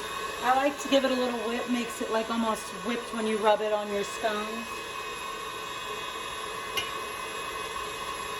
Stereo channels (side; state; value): both; identical; correlation 1.00